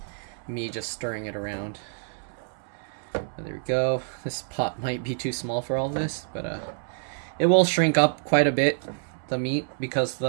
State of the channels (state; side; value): silent; left; 60 dB below the other